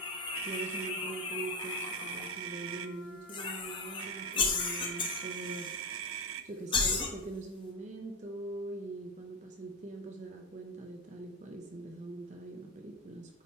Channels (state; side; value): normal; both; correlation 0.11